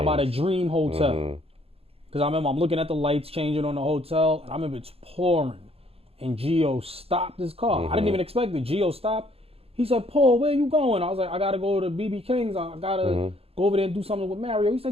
by the Dream Hotel, because I remember I'm looking at the lights changing on the hotel, and I remember it's pouring, and Gio stopped his car. I didn't even expect it. Gio stopped. He said, Paul, where you going? I was like, I got to go to BB King's. I got to go over there and do something with Mario. He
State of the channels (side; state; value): left; late; 0.28 ms